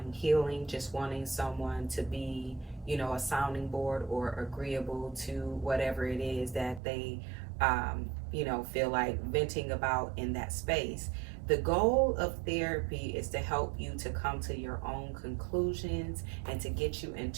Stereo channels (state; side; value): drops out; left; at 6.8 s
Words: healing, just wanting someone to be, a sounding board or agreeable to whatever it is that they feel like venting about in that space. The goal of therapy is to help you to come to your own conclusions and to get you